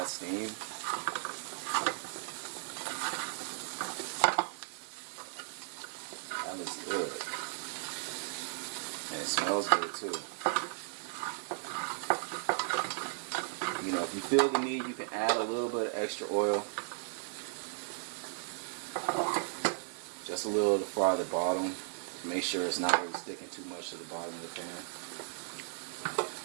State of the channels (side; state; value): left; silent; digital silence